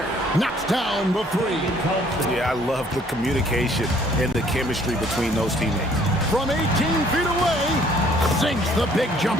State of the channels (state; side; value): normal; both; correlation 0.60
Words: Knocks down the three. Yeah, I love the communication and the chemistry between those teammates. From 18 feet away, sinks the big